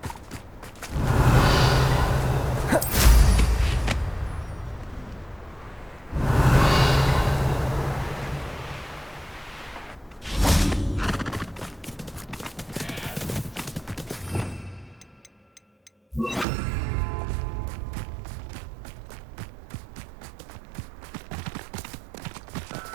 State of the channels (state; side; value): drops out; left; at 16.4 s